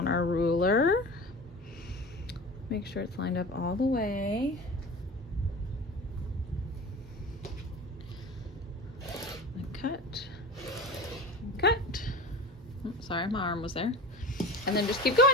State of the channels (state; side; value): normal; both; correlation 0.34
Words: our ruler. Make sure it's lined up all the way. And cut, cut. Oh, sorry, my arm was there. And then just keep